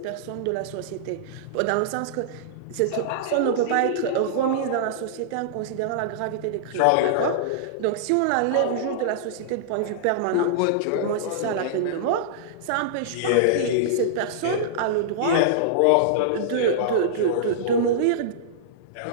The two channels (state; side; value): different; both; correlation -0.02